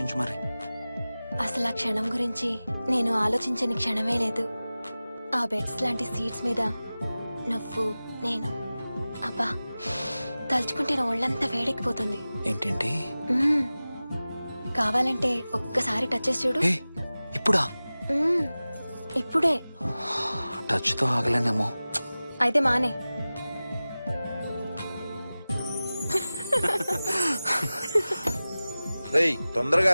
మరి. అసలు ఆ క్షణం గురించి నేను ఆలోచించని క్షణమే లేదు. ఆ బెడ్స్ లాంటి సీట్స్ మీద నువ్వు నేను. అబ్బా తలుచుకుంటే నా ఒళ్ళంతా వేడెక్కిపోతుంది. ఏంటేంటి? మ్మ్. కావాలంటే ఒక్కసారి టచ్ చేసి చూడు. ఏ ఇప్పుడా? మ్మ్. ఇప్పుడే. టచ్ తో ఆగలేనేమో. అయితే మానే. రేయ్ తొందరగా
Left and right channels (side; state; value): both; inverted; correlation -0.97